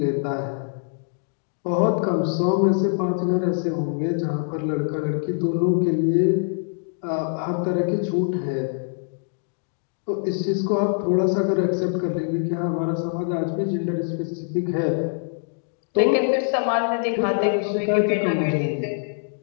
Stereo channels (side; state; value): right; silent; digital silence